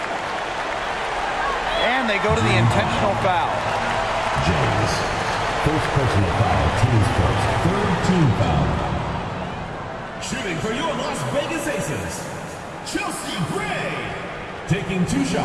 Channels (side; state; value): both; identical; correlation 1.00